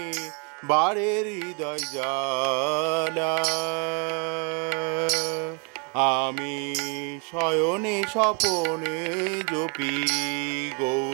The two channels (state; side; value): quieter; left; 36.3 dB